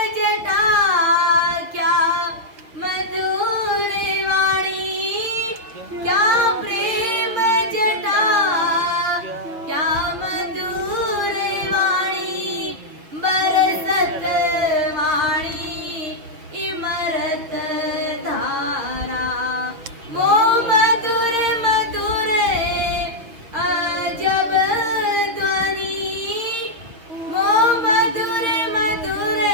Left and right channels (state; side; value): late; left; 6.8 ms